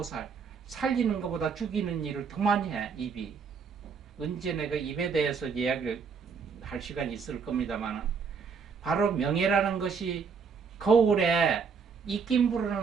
살리는 것보다 죽이는 일을 더 많이 해, 입이. 언제 내가 입에 대해서 이야기를 할 시간이 있을 겁니다만, 바로 명예라는 것이 거울에 입김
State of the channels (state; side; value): quieter; left; 5.8 dB